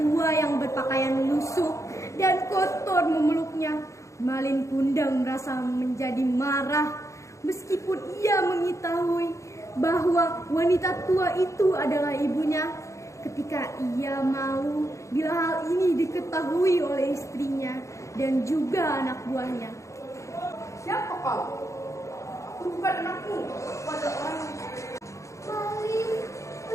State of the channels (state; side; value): late; right; 0.15 ms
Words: yang berpakaian lusuh dan kotor memeluknya, Malin Kundang merasa menjadi marah. Meskipun ia mengetahui bahwa wanita tua itu adalah ibunya, ketika ia malu bila hal ini diketahui oleh istrinya dan juga anak buahnya. Siapa kau? Aku bukan anakmu. Aku adalah orang. Malin,